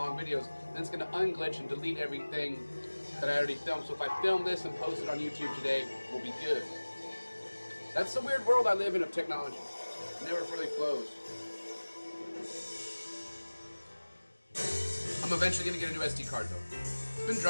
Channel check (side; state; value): both; inverted; correlation -1.00